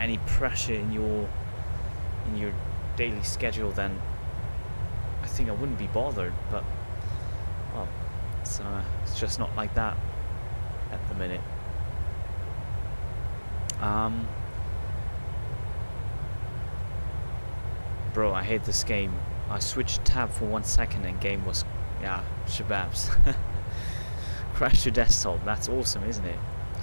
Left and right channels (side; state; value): both; inverted; correlation -1.00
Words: pressure in your daily schedule, then I think I wouldn't be bothered. But well, it's just not like that at the minute. Bro, I hate this game. I switched tab for 1 second and game was, yeah, shababs. Crashed your desktop. That's awesome, isn't it?